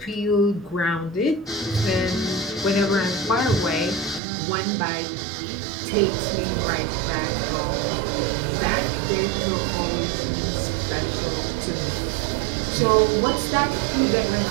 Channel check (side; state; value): left; drops out; at 4.2 s